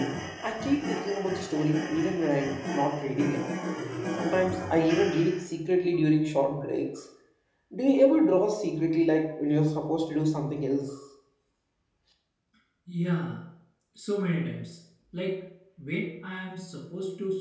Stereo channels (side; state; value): both; identical; correlation 1.00